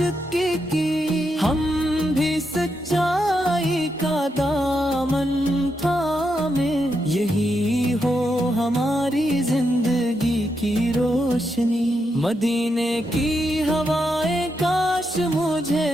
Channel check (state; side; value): normal; both; correlation 0.83